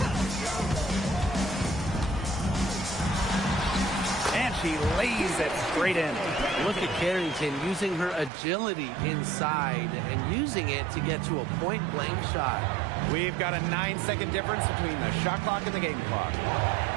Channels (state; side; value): drops out; left; at 8.3 s